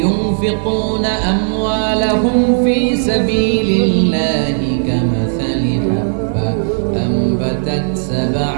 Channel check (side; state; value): left; silent; digital silence